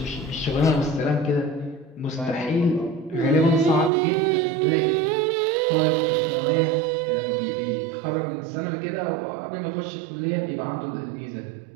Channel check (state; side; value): drops out; left; at 3.9 s